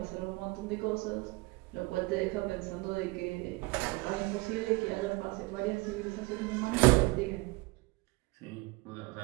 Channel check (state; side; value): quieter; left; 24.2 dB